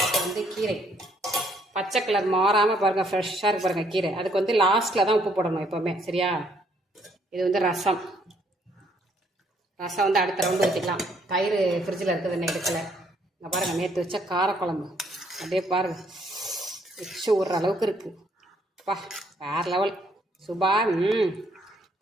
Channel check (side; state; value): both; normal; correlation 0.68